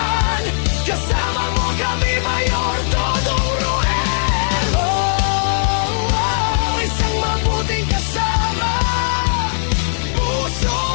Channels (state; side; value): silent; right; digital silence